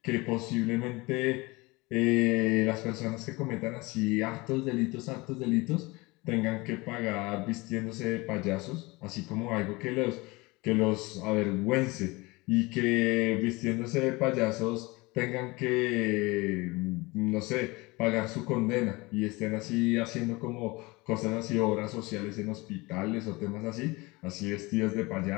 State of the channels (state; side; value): quieter; right; 23.6 dB